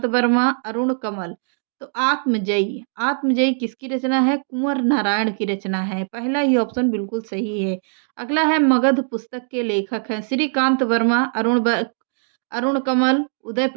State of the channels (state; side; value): silent; left; 64 dB below the other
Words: वर्मा, अरुण कमल। तो आत्मजयी आत्मजयी किसकी रचना है? कुंवर नारायण की रचना है। पहला ही ऑप्शन बिल्कुल सही है। अगला है, मगध पुस्तक के लेखक हैं श्रीकांत वर्मा, अरुण कमल, उदय